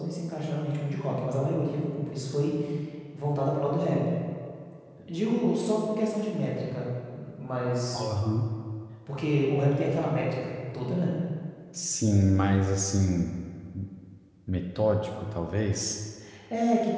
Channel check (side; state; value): both; identical; correlation 1.00